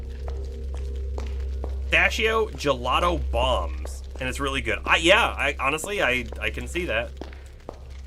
Pistachio gelato bombs, and it's really good. Honestly, I can see that.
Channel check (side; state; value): both; identical; correlation 1.00